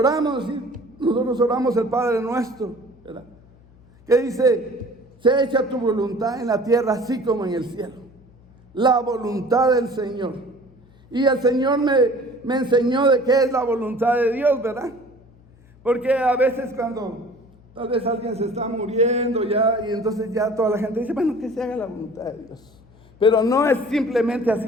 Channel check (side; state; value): left; noise; hum, 27 dB below the sound